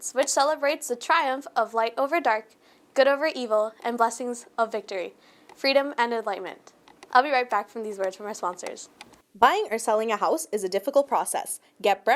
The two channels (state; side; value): identical; both; correlation 1.00